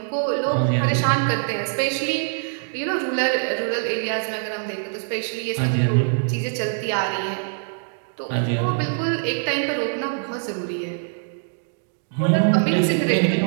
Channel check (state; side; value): silent; left; digital silence